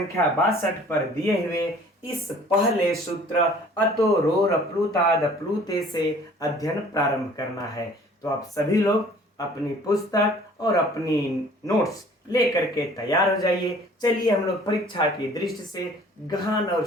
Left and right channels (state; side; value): normal; both; correlation 0.52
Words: 62 पर दिए हुए इस पहले सूत्र अतो रोर प्लूताद प्लूते से अध्ययन प्रारंभ करना है। तो आप सभी लोग अपनी पुस्तक और अपनी नोट्स लेकर के तैयार हो जाइए। चलिए हम लोग परीक्षा की दृष्टि से गहन और